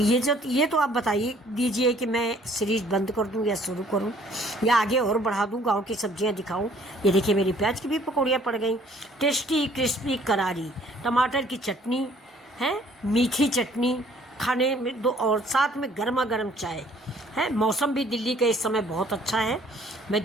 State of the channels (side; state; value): both; normal; correlation 0.59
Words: तो आप बताइए दीजिए कि मैं सीरीज़ बंद कर दूं या शुरू करूं या आगे और बढ़ा दूं, गांव की सब्जियां दिखाऊं। ये देखिए मेरी प्याज की भी पकौड़ियाँ पड़ गई। टेस्टी क्रिस्पी करारी टमाटर की चटनी है, मीठी चटनी खाने में दो, और साथ में गर्मा गर्म चाय है। मौसम भी दिल्ली का इस समय बहुत अच्छा है। मैं